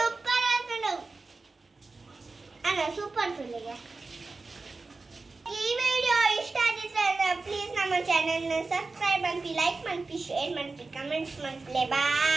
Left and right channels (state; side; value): quieter; left; 3.7 dB